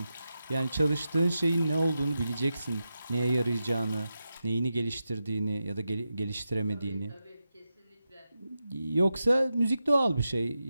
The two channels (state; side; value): inverted; both; correlation -0.90